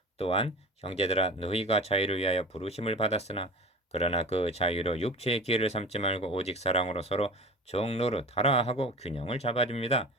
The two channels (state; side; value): normal; both; correlation 0.36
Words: 또한 형제들아 너희가 자유를 위하여 부르심을 받았으나 그러나 그 자유로 육체의 기회를 삼지 말고 오직 사랑으로 서로 종노릇하라 하고 균형을 잡아줍니다.